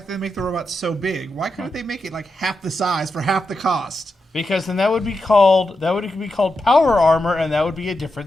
that they make the robots so big. Why couldn't they make it like half the size for half the cost? Because then that would be called power armor, and that would be a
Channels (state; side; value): normal; both; correlation 0.87